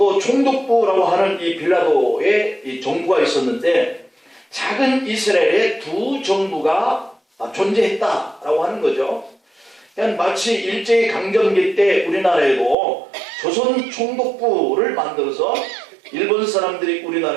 총독부라고 하는 이 빌라도의 이 정부가 있었는데 작은 이스라엘에 두 정부가 존재했다라고 하는 거죠. 그냥 마치 일제강점기 때 우리나라에도 조선 총독부를 만들어서 일본 사람들이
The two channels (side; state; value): left; drops out; at 12.8 s